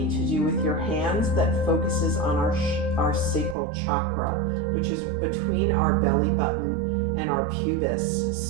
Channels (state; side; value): drops out; left; at 3.6 s